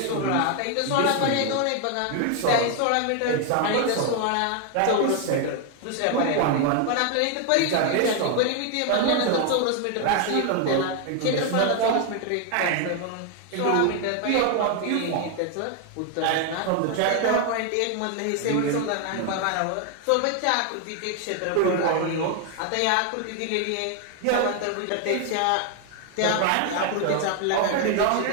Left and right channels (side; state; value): both; different; correlation 0.01